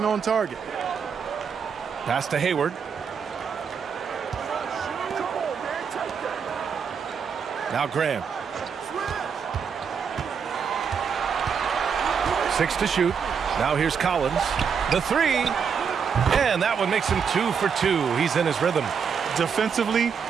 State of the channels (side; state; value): left; quieter; 6.6 dB